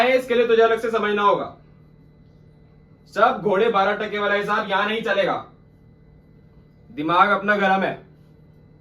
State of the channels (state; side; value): identical; both; correlation 1.00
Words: इसके लिए तुझे अलग से समझना होगा। सब घोड़े 12 टके वाला हिसाब यहां नहीं चलेगा। दिमाग अपना गरम है,